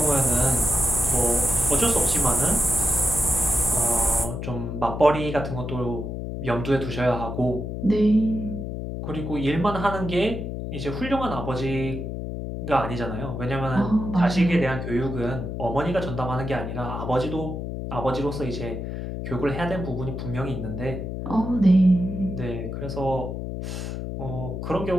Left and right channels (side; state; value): left; noise; hum, 5 dB below the sound